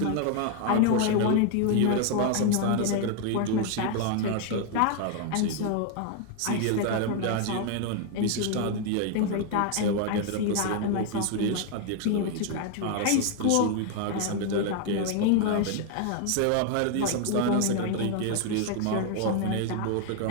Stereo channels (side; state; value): both; different; correlation 0.01